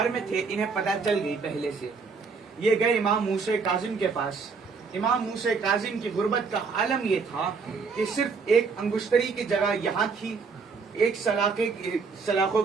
میں تھے، انہیں پتہ چل گئی پہلے سے. یہ گئے امام موسیٰ کاظم کے پاس. امام موسیٰ کاظم کی غربت کا عالم یہ تھا کہ صرف ایک انگشتری کی جگہ یہاں تھی، ایک سلاخوں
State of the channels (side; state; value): left; quieter; 5.0 dB